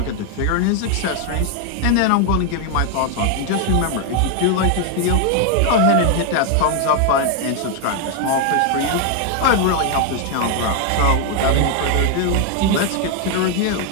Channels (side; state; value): both; different; correlation 0.00